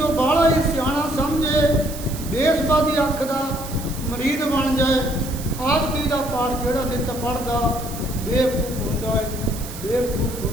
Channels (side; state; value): right; noise; hiss, 13 dB below the sound